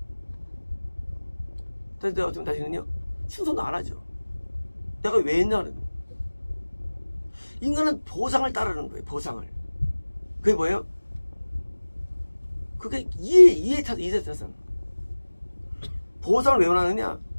그래서 내가 어쩌면 다시는요 충성도 안 하죠. 내가 왜 했냐 그러면 인간은 보상을 따르는 거예요. 보상을. 그게 뭐예요? 그게 이해타산. 보상을 왜 원하느냐?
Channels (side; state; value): both; inverted; correlation -1.00